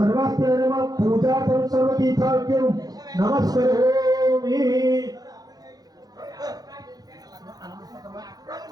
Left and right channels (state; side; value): late; left; 0.19 ms